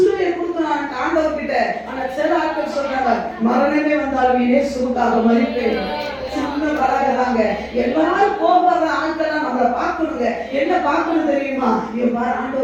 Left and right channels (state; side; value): identical; both; correlation 1.00